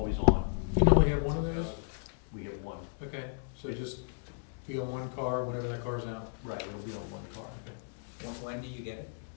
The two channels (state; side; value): silent; right; digital silence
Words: on. You only have one of those? We have one. Okay, so just be on one car whenever that car's out? Right, it'll be on one car. When do you get it?